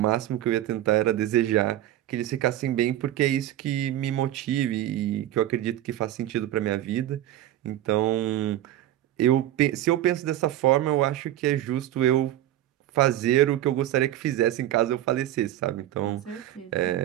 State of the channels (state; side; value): quieter; left; 13.2 dB